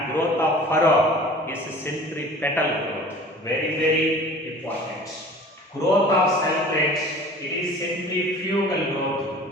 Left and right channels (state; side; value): normal; both; correlation 0.44